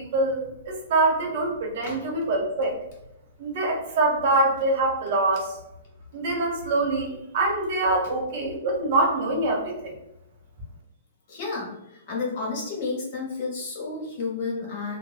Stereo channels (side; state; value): both; inverted; correlation -0.33